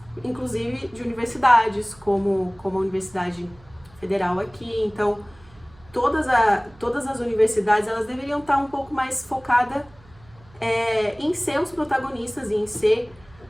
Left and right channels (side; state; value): right; noise; hum, 26 dB below the sound